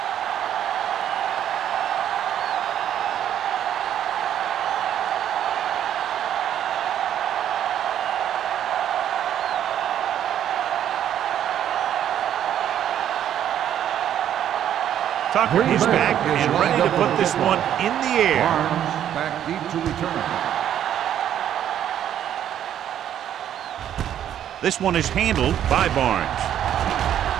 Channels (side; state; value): left; quieter; 10.4 dB